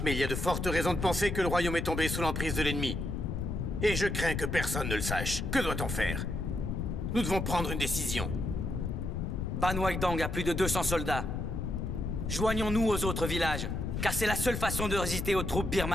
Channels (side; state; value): left; noise; rumble, 2 dB below the sound